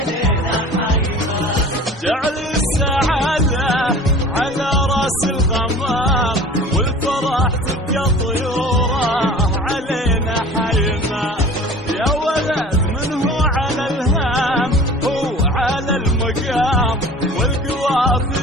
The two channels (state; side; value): normal; both; correlation 0.43